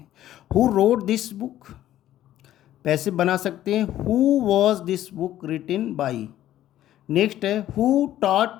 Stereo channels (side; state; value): right; quieter; 12.9 dB